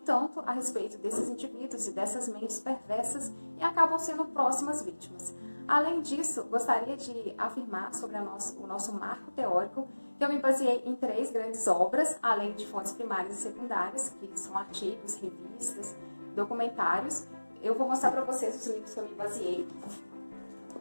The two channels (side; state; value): both; inverted; correlation -1.00